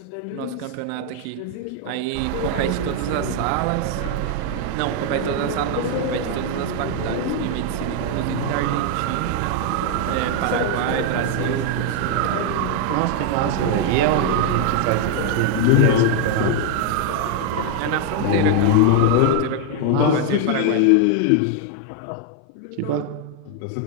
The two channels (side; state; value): both; different; correlation 0.00